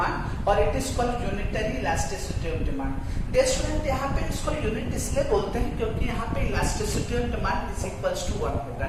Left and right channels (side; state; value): both; identical; correlation 1.00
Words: और it is called unitary elasticity of demand. Dear student, यहाँ पे इसको यूनिट इसलिए बोलते हैं क्योंकि यहाँ पे elasticity of demand is equals to 1 होगा,